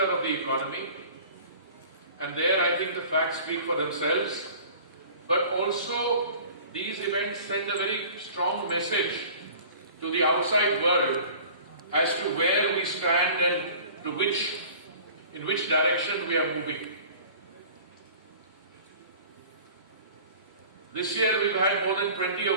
the economy, and there I think the facts speak for themselves, but also these events send a very strong message to the outside world as to where we stand and in which direction we are moving. This year we've had more than 20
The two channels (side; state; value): both; inverted; correlation -0.44